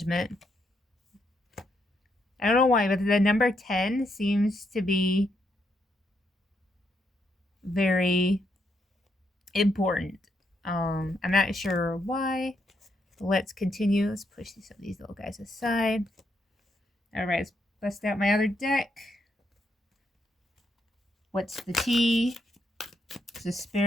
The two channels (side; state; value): both; normal; correlation 0.78